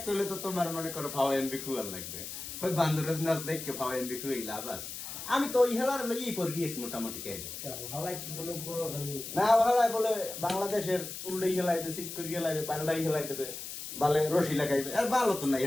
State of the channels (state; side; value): noise; left; hiss, 8 dB below the sound